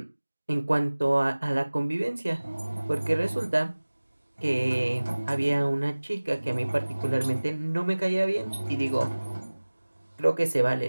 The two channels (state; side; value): inverted; both; correlation -1.00